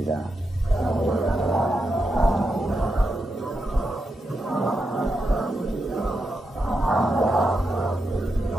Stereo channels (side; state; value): both; normal; correlation 0.86